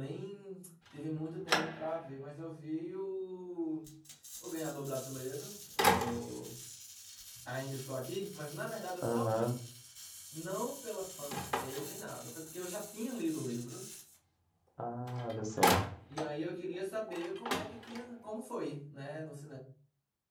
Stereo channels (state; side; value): identical; both; correlation 1.00